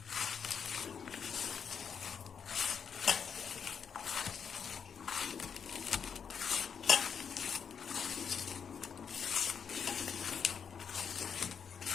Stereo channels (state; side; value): quieter; right; 6.9 dB